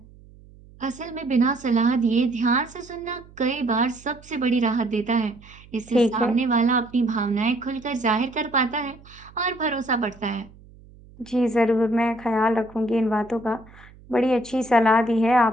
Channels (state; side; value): noise; right; hum, 23 dB below the sound